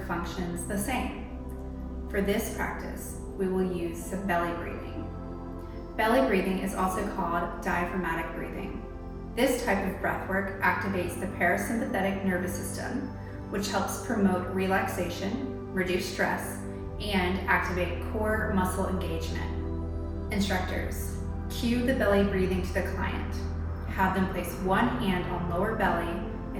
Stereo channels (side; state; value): both; identical; correlation 1.00